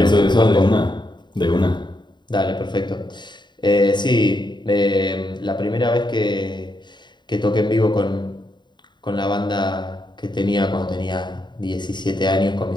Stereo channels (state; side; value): late; right; 0.22 ms